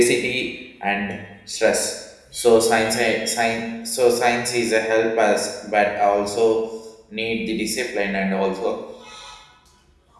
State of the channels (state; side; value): identical; both; correlation 1.00